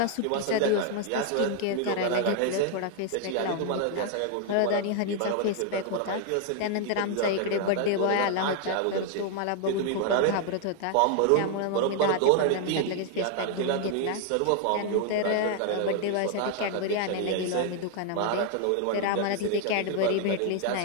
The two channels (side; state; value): both; different; correlation 0.00